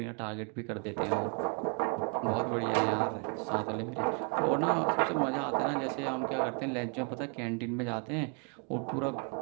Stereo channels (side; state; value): left; quieter; 38.5 dB